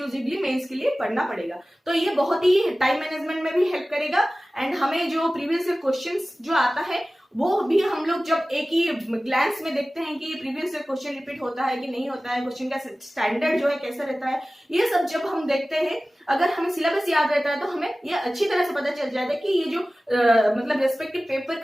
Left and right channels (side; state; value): both; normal; correlation 0.97